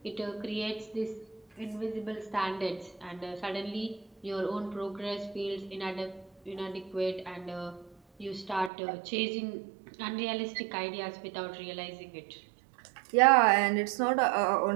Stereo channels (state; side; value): drops out; left; at 8.7 s